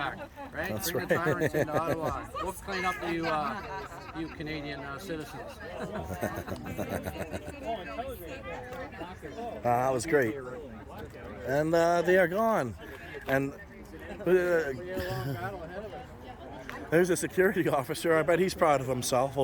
right? That's Bring right. the tyrants into Ottawa. We'll clean up the you Canadian citizens. That was great. And they are gone. And there's a security officer. I bet he's proud of himself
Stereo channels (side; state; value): both; identical; correlation 1.00